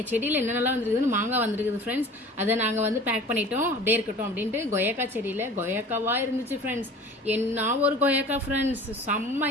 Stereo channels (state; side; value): normal; both; correlation 0.43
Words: செடியில் என்னென்னலாம் வந்துருக்குதுன்னு மாங்காய் வந்துருக்குது ஃப்ரெண்ட்ஸ். அதை நாங்கள் வந்து பேக் பண்ணிட்டோம், அப்படியே இருக்கட்டும் அப்படின்ட்டு. கொய்யாக்கா செடியில் கொய்யாக்காவாக இருந்துச்சு ஃப்ரெண்ட்ஸ். என்ன ஒரு கொய்யாக்கா ஃப்ரெண்ட்ஸ்,